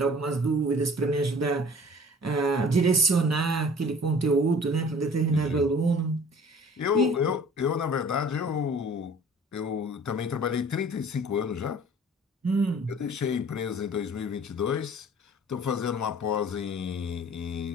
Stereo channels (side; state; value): both; normal; correlation 0.49